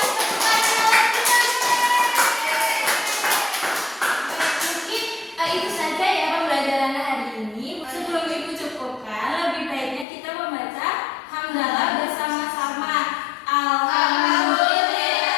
tangan lagi dong. Mungkin itu saja ya pembelajaran hari ini. Sebelum Ibu cukupkan, lebih baiknya kita membaca hamdalah bersama-sama.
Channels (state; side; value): drops out; right; at 10.1 s